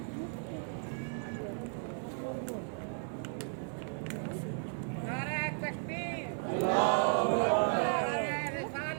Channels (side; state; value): left; silent; 55 dB below the other